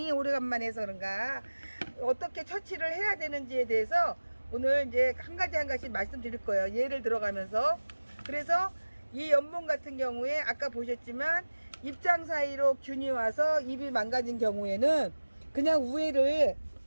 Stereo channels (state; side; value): inverted; both; correlation -1.00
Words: 오래간만에 해서 그런가, 어떻게 처치를 해야 되는지에 대해서 오늘 이제 한 가지 말씀드릴 거예요. 예를 들어가면서. 그래서 이 연봉 같은 경우에 아까 보셨지만 입장 사이로 균이 와서 입이 망가진 경우에는 그냥 우회를